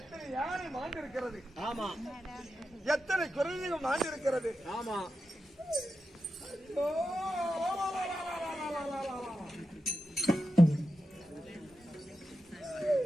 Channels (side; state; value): both; normal; correlation 0.90